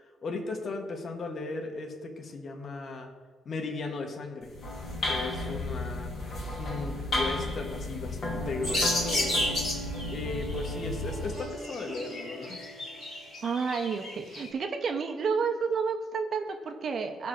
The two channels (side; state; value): both; normal; correlation 0.69